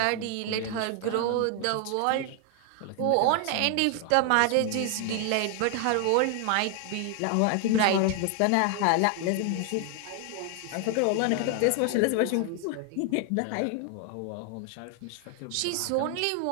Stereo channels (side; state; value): both; different; correlation 0.00